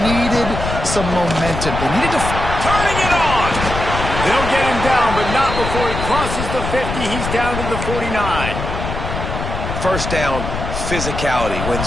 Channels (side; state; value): left; noise; rumble, 5 dB below the sound